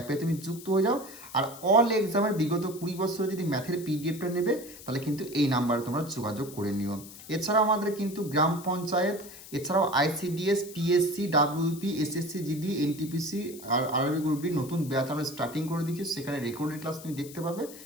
তুমি যুক্ত হয়ে যাও, আর অল এক্সামের বিগত 20 বছরে যদি ম্যাথের পিডিএফটা নেবে তাহলে কিন্তু এই নাম্বারে তোমরা যোগাযোগ করে নিও। এছাড়াও আমাদের কিন্তু গ্রাম পঞ্চায়েত, এছাড়াও ICDS, PSC, WP, SSC GD, NTPC RRB গ্রুপটি নতুন ব্যাচ আমরা স্টার্টিং করে দিচ্ছি, সেখানে রেকর্ডেড ক্লাস তুমি দেখতে পাবে,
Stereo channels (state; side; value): noise; left; hiss, 16 dB below the sound